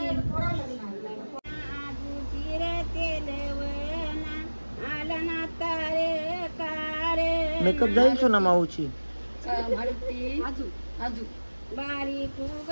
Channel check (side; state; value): both; inverted; correlation -1.00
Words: मेकअप जाईल सोना माऊची बारीक उग